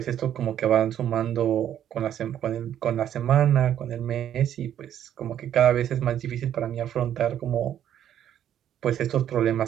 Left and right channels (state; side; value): quieter; left; 10.4 dB